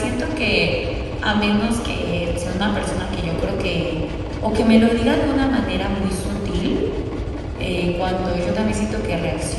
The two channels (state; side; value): identical; both; correlation 1.00